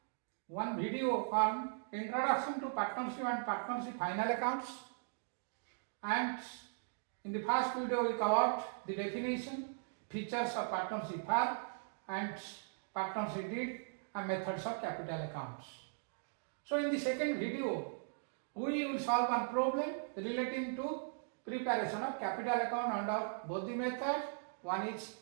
one video on introduction to partnership and partnership final accounts, and in the first video we covered the definition, features of partnership firm and partnership deed and methods of capital accounts. So in the second video we will solve one problem relating to preparation of capital account under both the methods. One is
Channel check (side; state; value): left; silent; digital silence